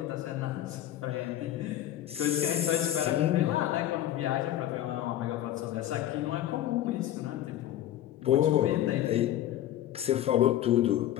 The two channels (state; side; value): quieter; right; 12.5 dB